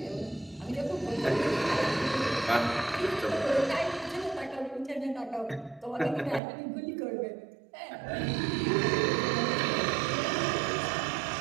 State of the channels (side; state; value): left; drops out; at 6.4 s